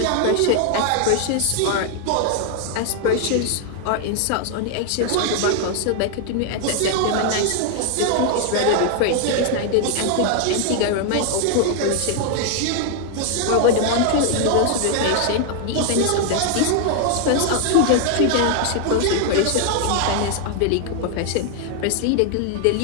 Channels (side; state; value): both; different; correlation 0.00